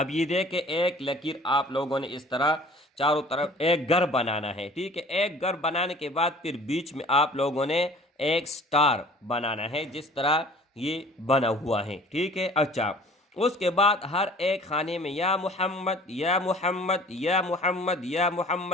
یہ دیکھیں ایک لکیر آپ لوگوں نے اس طرح چاروں طرف ایک گھر بنانا ہے، ٹھیک ہے۔ ایک گھر بنانے کے بعد پھر بیچ میں آپ لوگوں نے ایک سٹار بنانا ہے، جس طرح یہ بنا ہوا ہے، ٹھیک ہے۔ اچھا اس کے بعد ہر ایک خانے میں یا محمد یا محمد یا محمد یا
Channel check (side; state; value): both; normal; correlation 0.49